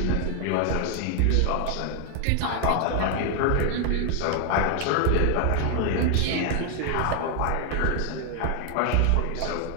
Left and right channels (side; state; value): both; different; correlation 0.00